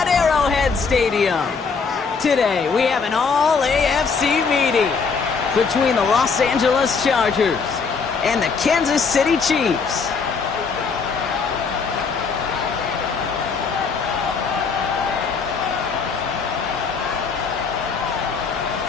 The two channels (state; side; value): quieter; right; 5.2 dB